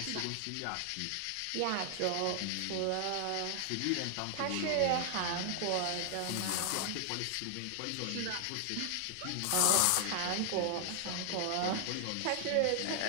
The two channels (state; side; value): different; both; correlation 0.00